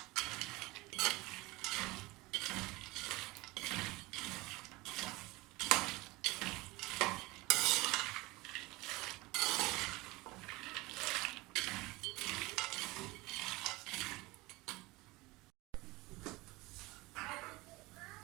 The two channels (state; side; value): quieter; left; 22.0 dB